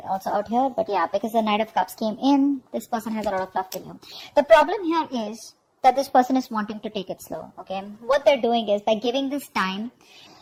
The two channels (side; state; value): both; identical; correlation 1.00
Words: also out here. But yeah, because the Knight of Cups came in, this person has a lot of love for you. The problem here is that this person is wanting to take it slow. Okay, what they're doing is, by giving this time,